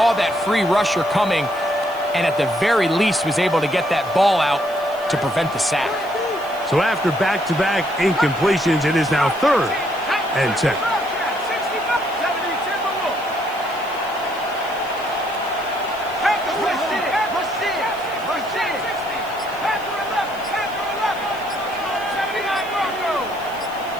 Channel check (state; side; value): noise; right; hiss, 22 dB below the sound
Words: that free rusher coming, and at the very least was able to get that ball out to prevent the sack. So after back-to-back incompletions, it is now 3rd and 10.